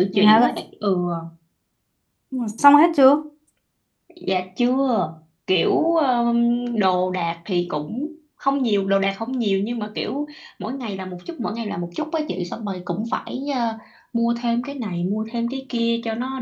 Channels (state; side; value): identical; both; correlation 1.00